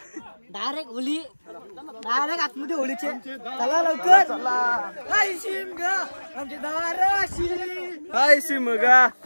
डायरेक्ट होली डायरेक्ट आतमध्ये होलीचे चला लवकर हाय शिमगा आमची दाराशी हाय शिमगा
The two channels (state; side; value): inverted; both; correlation -1.00